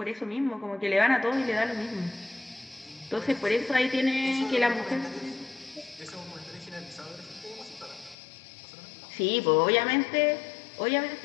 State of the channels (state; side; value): drops out; right; at 8.2 s